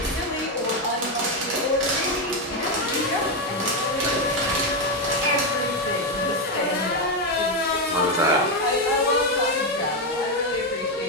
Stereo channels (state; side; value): normal; both; correlation 0.07